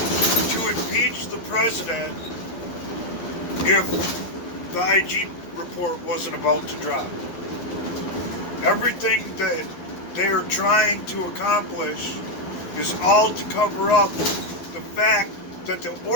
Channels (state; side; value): late; right; 11 ms